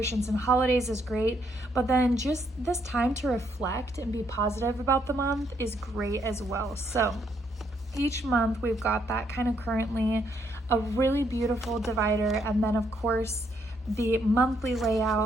and holidays is great, but then just this time to reflect and be positive about the month is great as well. So each month we've got that kind of currently, a really beautiful divider, and then of course the monthly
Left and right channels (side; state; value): both; normal; correlation 0.73